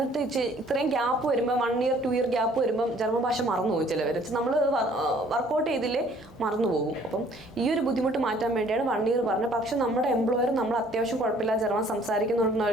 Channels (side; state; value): both; normal; correlation 0.58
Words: ഇത്രയും ഗ്യാപ്പ് വരുമ്പോൾ 1 year 2 year ഗ്യാപ്പ് വരുമ്പം ജർമ്മൻ ഭാഷ മറന്നു പോകും ചിലവർ. നമ്മൾ വർക്കൗട്ട് ചെയ്തില്ലേ മറന്നു പോകും. അപ്പം ഈ ഒരു ബുദ്ധിമുട്ട് മാറ്റാൻ വേണ്ടിയാണ് 1 year പറഞ്ഞത്. പക്ഷെ നമ്മുടെ എംപ്ലോയർ നമ്മൾ അത്യാവശ്യം കുഴപ്പമില്ല ജർമ്മൻ